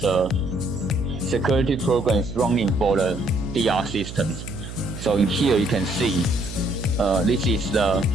security program is running for the DR systems. So in here you can see this is the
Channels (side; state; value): right; noise; hum, 11 dB below the sound